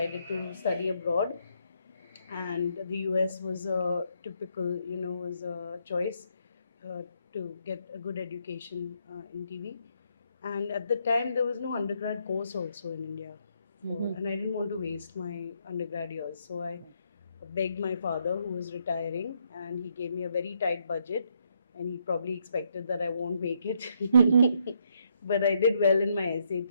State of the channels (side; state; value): both; inverted; correlation -0.74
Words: to study abroad, and the US was a typical, was a choice to get a good education in TV. And at the time, there was no undergrad course also in India, and I didn't want to waste my undergrad years. So I begged my father, who was retiring, and he gave me a very tight budget, and he probably expected that I won't make it. But I did well in my